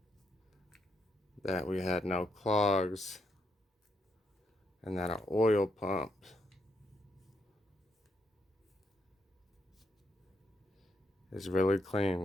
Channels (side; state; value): both; normal; correlation 0.78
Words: that we had no clogs and that our oil pump is really